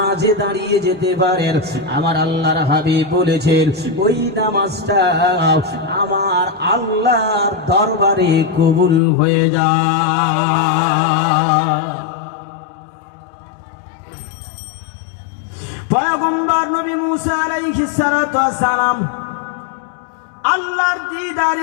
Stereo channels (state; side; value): drops out; right; at 9.0 s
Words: দাঁড়িয়ে যেতে পারেন, আমার আল্লাহর হাবিব বলেছেন ওই নামাজটা আমার আল্লাহর দরবারে কবুল হয়ে যায়। পয়গম্বর নবী মূসা আলাইহিস সালাতু ওয়াস সালাম আল্লাহর